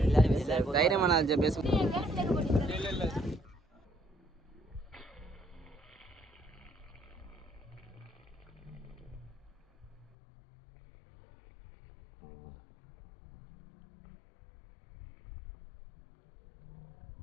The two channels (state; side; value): drops out; right; at 10.1 s